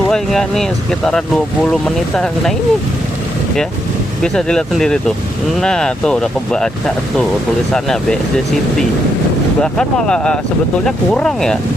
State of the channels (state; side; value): normal; both; correlation 0.79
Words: enggak nih sekitaran 20 menitan. Nah ini ya bisa dilihat sendiri tuh. Nah tuh udah kebaca tuh tulisannya BSD City. Bahkan malah sebetulnya kurang ya,